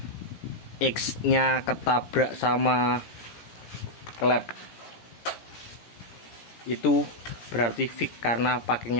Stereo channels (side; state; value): right; late; 17 ms